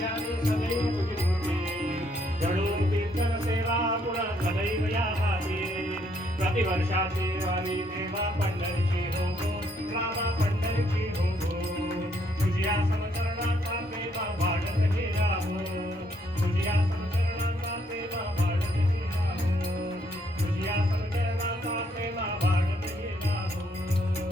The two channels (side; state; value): both; normal; correlation 0.71